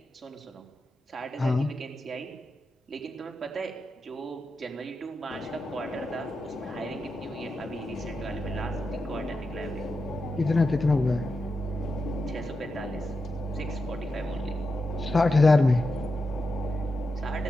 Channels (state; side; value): normal; both; correlation 0.88